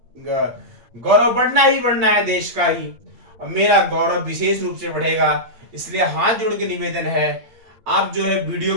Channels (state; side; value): late; left; 8.7 ms